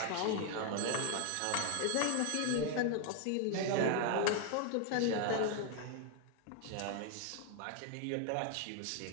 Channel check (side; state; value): both; different; correlation 0.00